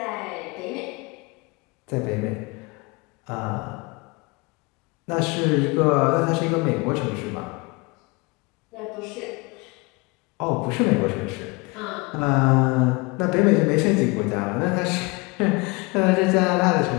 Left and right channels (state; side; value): quieter; right; 26.8 dB